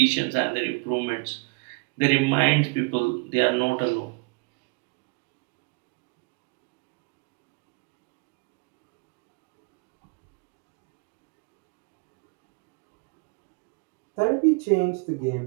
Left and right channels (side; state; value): left; quieter; 29.9 dB